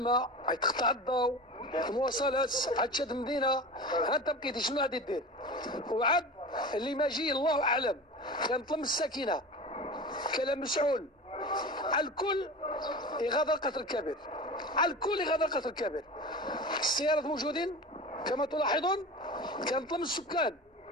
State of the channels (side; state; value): both; normal; correlation 0.32